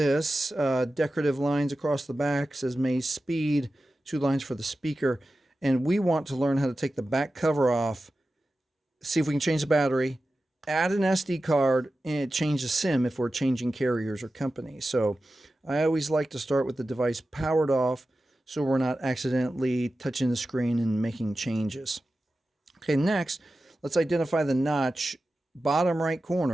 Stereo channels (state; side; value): normal; both; correlation 0.93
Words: Decorative lines across the back, says Maze Speed, 2 lines for the speaker. And we want to learn how to take the back cover off, see if we can change the battery, add an SD card, and change the SIM if we're changing carriers or companies. So I always like to start with the device powered off so we're not accidentally touching the screen and making changes. Okay, next, let's identify the notch. Bottom right